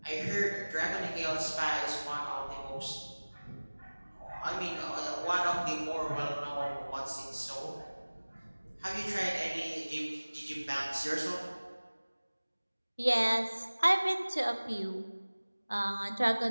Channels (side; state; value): both; inverted; correlation -1.00